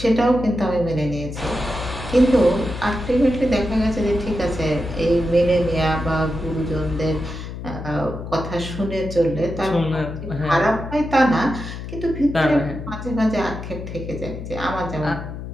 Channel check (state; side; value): noise; left; hum, 9 dB below the sound